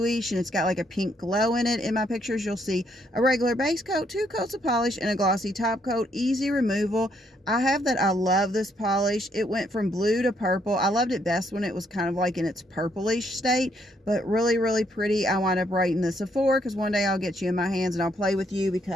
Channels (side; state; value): both; normal; correlation 0.72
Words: and it's got like a pink glow in it. In my pictures, you'll see a regular base coat, 2 coats of polish, and a glossy top coat, easy removal. I have that. I love this polish. It went from blue to purple. I loved it best when it was kind of like in its purplish state, but really, really pretty. I wound up rating this a 4, because one day I'll get you in my hands and I'll play with you,